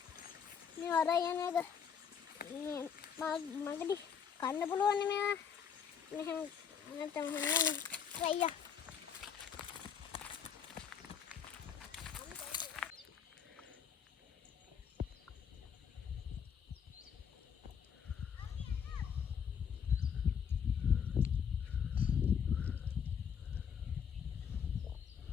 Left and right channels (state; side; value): quieter; right; 7.4 dB